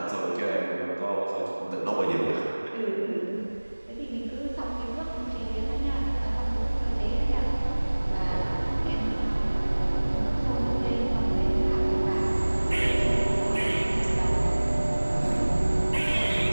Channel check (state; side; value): inverted; both; correlation -1.00